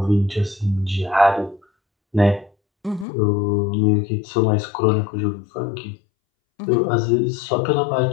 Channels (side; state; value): right; drops out; at 3.1 s